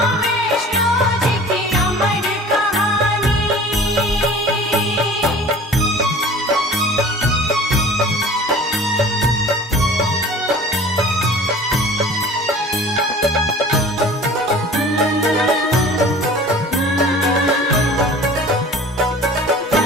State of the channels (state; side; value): normal; both; correlation 0.44